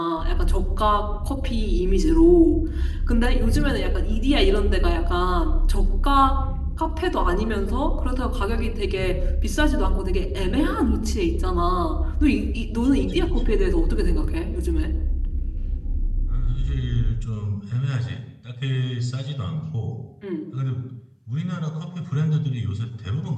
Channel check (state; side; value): identical; both; correlation 1.00